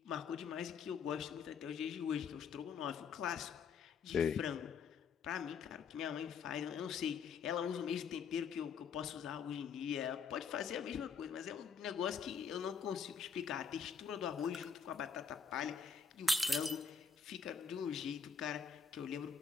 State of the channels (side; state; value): right; quieter; 6.2 dB